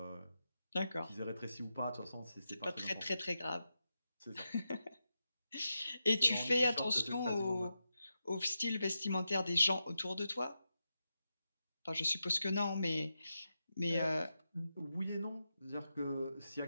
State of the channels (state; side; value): inverted; both; correlation -0.88